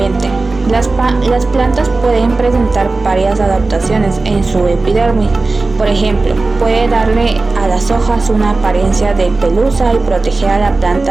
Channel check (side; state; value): left; quieter; 3.5 dB